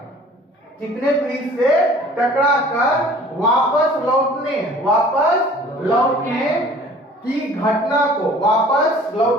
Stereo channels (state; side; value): normal; both; correlation 0.49